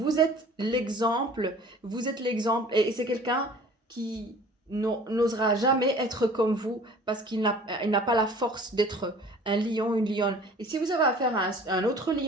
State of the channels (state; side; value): normal; both; correlation 0.47